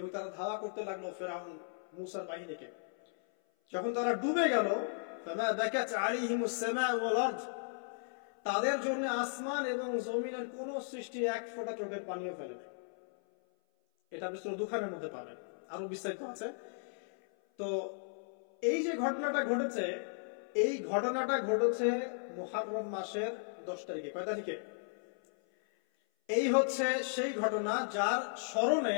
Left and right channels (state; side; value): silent; right; 54 dB below the other